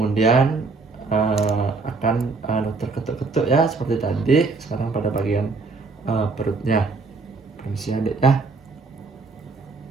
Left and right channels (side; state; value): left; quieter; 4.0 dB